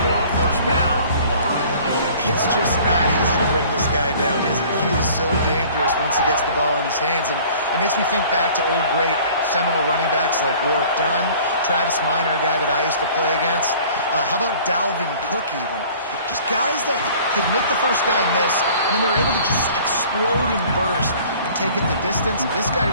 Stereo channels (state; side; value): inverted; both; correlation -0.50